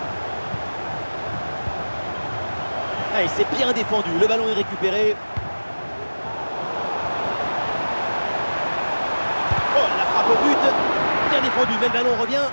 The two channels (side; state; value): both; inverted; correlation -1.00